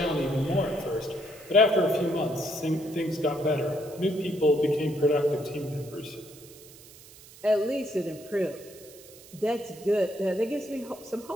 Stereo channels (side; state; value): right; noise; hiss, 20 dB below the sound